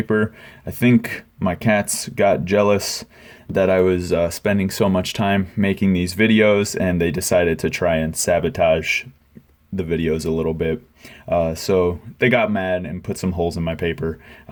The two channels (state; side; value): identical; both; correlation 1.00